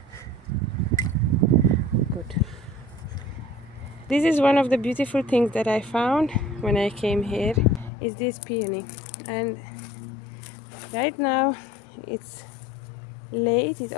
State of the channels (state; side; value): drops out; right; at 7.9 s